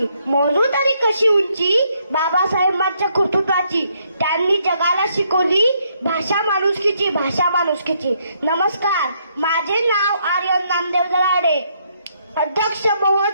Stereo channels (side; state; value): both; inverted; correlation -0.73